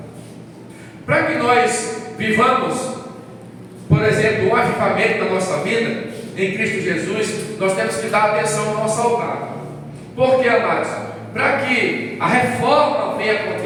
para que nós vivamos, por exemplo, um avivamento na nossa vida, em Cristo Jesus, nós temos que dar atenção ao nosso altar. Por que, amados? Para que a reforma venha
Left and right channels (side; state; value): both; identical; correlation 1.00